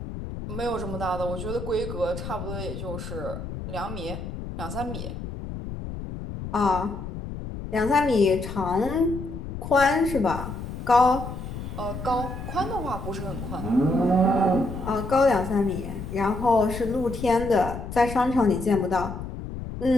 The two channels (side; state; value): left; noise; rumble, 8 dB below the sound